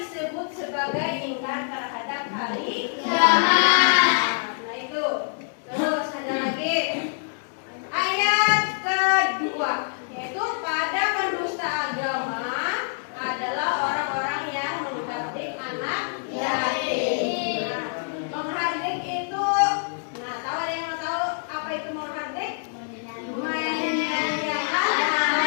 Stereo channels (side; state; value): right; silent; digital silence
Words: sebagai ingkar terhadap hari kiamat. Nah itu. Terus ada lagi ayat kedua, yaitu pada pendusta agama adalah orang-orang yang menghardik anak yatim. Nah, menghardik itu, nah tahu ada yang tahu apa itu menghardik? Menyanyiakan